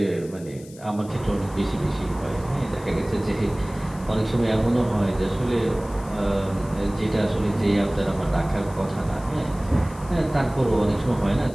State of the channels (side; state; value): left; noise; hiss, 22 dB below the sound